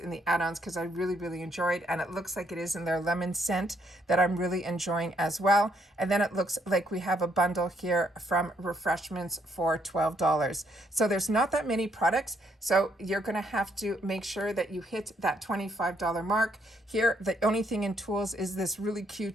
the add-ons because I really, really enjoyed, and it looks like it is in their lemon scent that I'm really enjoying as well. And then it looks like we have a bundle here from Refreshments for $12. So there's not that many products, so you're going to have to make sure that you hit that $25 mark. Here, the only thing in tools is this really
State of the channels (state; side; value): normal; both; correlation 0.71